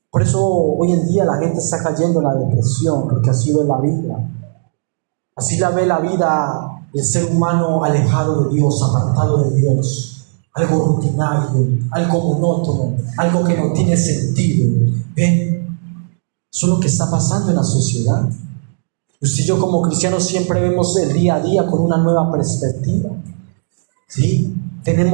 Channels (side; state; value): left; silent; digital silence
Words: Por eso hoy en día la gente está cayendo en la depresión, porque así ve la vida. Así la ve la vida el ser humano alejado de Dios, apartado de Dios. Algo rutinario, algo monótono, algo que no tiene sentido. ¿Ven? Eso es lo que está pasando en la sociedad. Usted y yo como cristianos siempre vemos el día a día con una nueva perspectiva. ¿Sí?